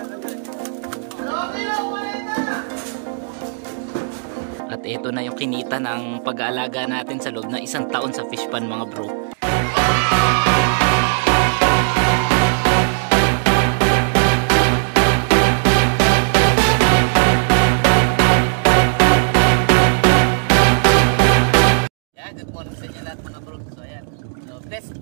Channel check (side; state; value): left; silent; digital silence